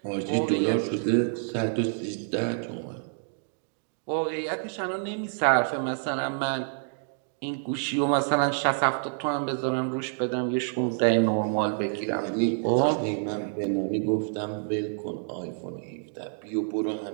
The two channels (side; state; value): left; silent; digital silence